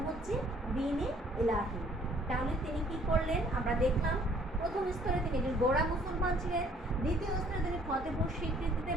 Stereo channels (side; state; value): both; normal; correlation 0.60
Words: হচ্ছে দ্বীন-এ ইলাহি। তাহলে তিনি কি করলেন, আমরা দেখলাম প্রথম স্তরে তিনি একজন গোঁড়া মুসলমান ছিলেন, দ্বিতীয় স্তরে তিনি ফতেপুর